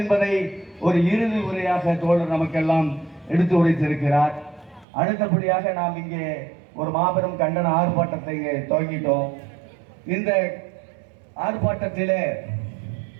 ஒரு இறுதி உரையாக தோழர் நமக்கெல்லாம் எடுத்து உரைத்திருக்கிறார். அடுத்தபடியாக நாம் இங்கே ஒரு மாபெரும் கண்டன ஆர்ப்பாட்டத்தை இங்கே துவங்கிட்டோம். இந்த ஆர்ப்பாட்டத்திலே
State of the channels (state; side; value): drops out; left; at 4.9 s